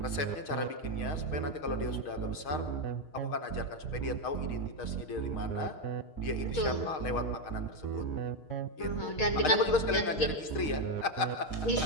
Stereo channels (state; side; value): late; right; 6.4 ms